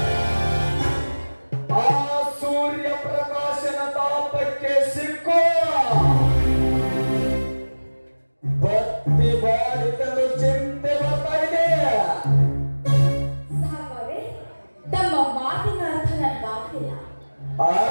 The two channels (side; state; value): both; inverted; correlation -1.00